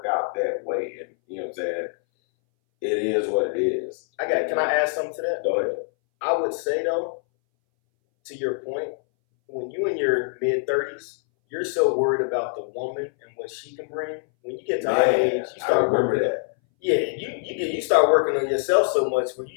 out that way. And you know what I'm saying? It is what it is. Can I add something to that? Go ahead. I would say, though, to your point, when you in your mid-30s, you're so worried about the woman and what she can bring. When you get to our age, you start working that. Yeah, you start working on yourself so much where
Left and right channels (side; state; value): right; silent; 61 dB below the other